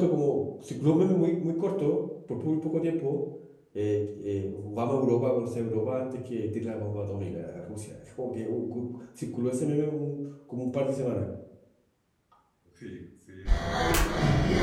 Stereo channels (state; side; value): identical; both; correlation 1.00